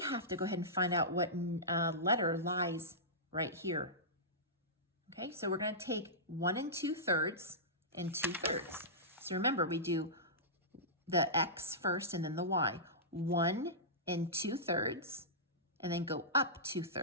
have to go ahead and find out what letter lies right here. Okay, so we're going to take 1 2/3 and 2/3. So remember, we do the X first and then the Y. 1 2/3, and then go up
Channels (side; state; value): both; normal; correlation -0.17